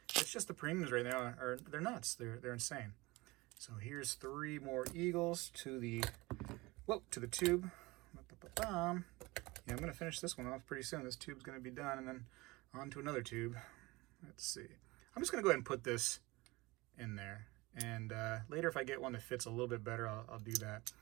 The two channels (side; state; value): left; quieter; 22.2 dB